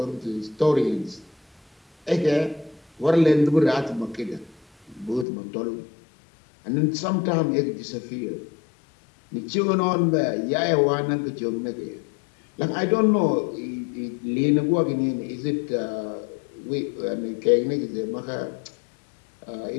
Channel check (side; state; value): right; drops out; at 5.2 s